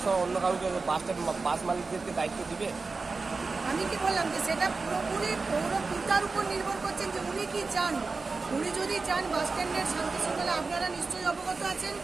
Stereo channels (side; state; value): left; quieter; 4.1 dB